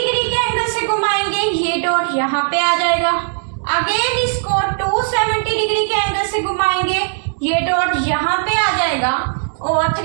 के एंगल से घुमाएंगे ये डॉट यहाँ पे आ जाएगा। अगेन इसको 270 डिग्री के एंगल से घुमाएंगे ये डॉट यहाँ पे आ जाएगा और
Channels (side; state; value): left; silent; digital silence